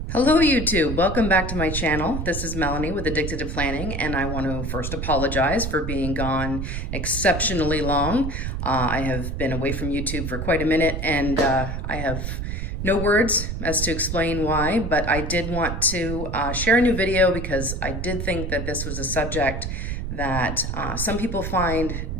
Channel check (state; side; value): noise; right; rumble, 4 dB below the sound